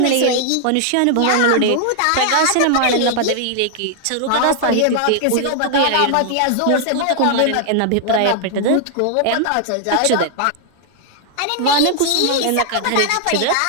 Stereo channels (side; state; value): both; different; correlation 0.00